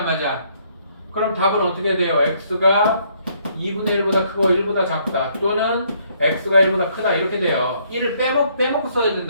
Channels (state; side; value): inverted; both; correlation -0.68